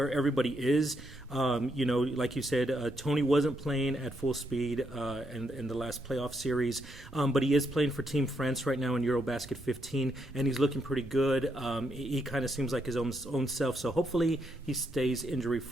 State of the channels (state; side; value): normal; both; correlation 0.78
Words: everybody is. Like you said, Tony wasn't playing at full speed in the last playoff series, but he is playing for Team France right now in Eurobasket 15, and he's looking pretty good. He kind of seems like his own self, so hopefully he stays